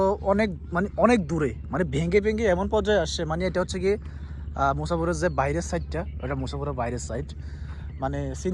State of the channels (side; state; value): both; identical; correlation 1.00